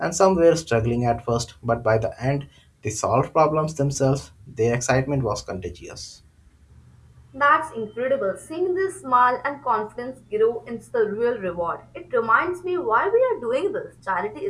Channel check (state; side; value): identical; both; correlation 1.00